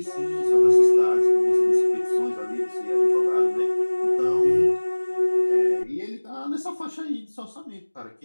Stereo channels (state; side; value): inverted; both; correlation -1.00